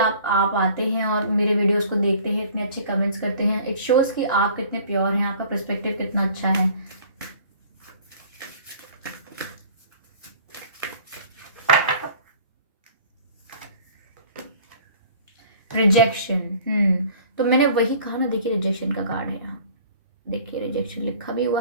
आते हैं और मेरे वीडियोस को देखते हैं, इतने अच्छे कमेंट्स करते हैं। इट शोज कि आप कितने प्योर हैं, आपका पर्सपेक्टिव कितना अच्छा है। रिजेक्शन, तो मैंने वही कहा ना, देखिए रिजेक्शन का कार्ड है यहाँ, देखिए रिजेक्शन लिखा भी हुआ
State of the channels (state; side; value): inverted; both; correlation -0.49